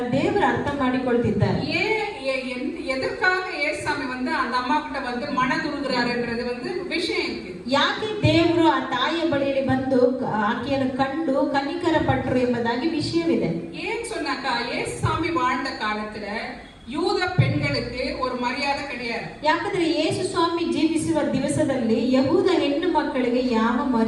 ದೇವರು ಅರ್ಥ ಮಾಡಿಕೊಳ್ತಿದ್ದಾರೆ. எதற்காக ஏசாமி வந்து அந்த அம்மா கிட்ட வந்து மனதுருகிறாருன்றது வந்து விஷயம் இருக்கு. ಯಾಕೆ ದೇವರು ಆ ತಾಯಿಯ ಬಳಿಯಲ್ಲಿ ಬಂದು ಆಕೆಯನ್ನು ಕಂಡು ಕನಿಕರ ಪಟ್ಟರು ಎಂಬುದಾಗಿ ವಿಷಯವಿದೆ. ஏன் சொன்னாக்கா, ஏசாமி வாழ்ந்த காலத்துல யூத பெண்களுக்கு ஒரு மரியாதை கிடையாது. ಯಾಕಂದ್ರೆ ಯೇಸು ಸ್ವಾಮಿ ಜೀವಿಸುವ ದಿವಸದಲ್ಲಿ ಯಹೂದ ಹೆಣ್ಣು ಮಕ್ಕಳಿಗೆ ಯಾವ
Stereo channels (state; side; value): identical; both; correlation 1.00